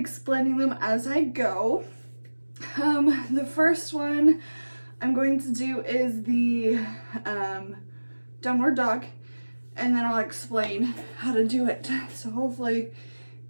them as I go. The first one I'm going to do is the downward dog, and then I'll explain how to do it. So hopefully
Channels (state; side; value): inverted; both; correlation -1.00